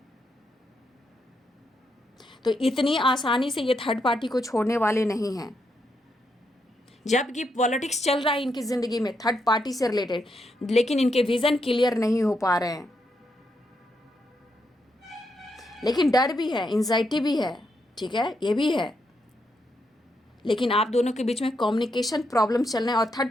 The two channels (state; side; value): normal; both; correlation 0.80